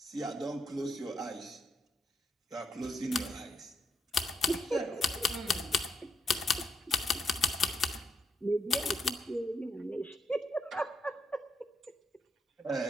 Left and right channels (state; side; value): normal; both; correlation 0.80